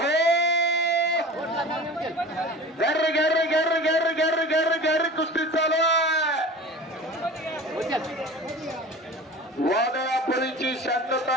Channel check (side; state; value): both; normal; correlation 0.37